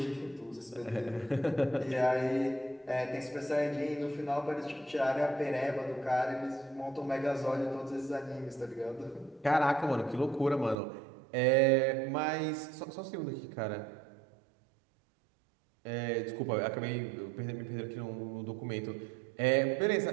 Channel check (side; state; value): left; drops out; at 10.8 s